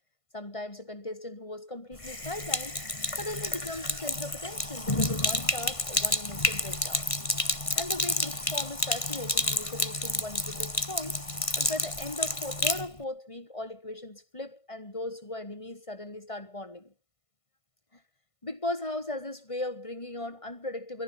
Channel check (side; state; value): right; late; 1.5 ms